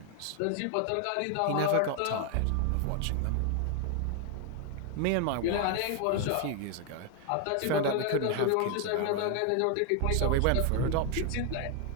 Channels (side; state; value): both; different; correlation 0.00